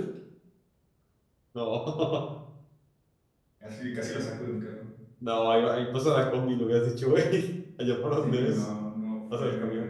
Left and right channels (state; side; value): identical; both; correlation 1.00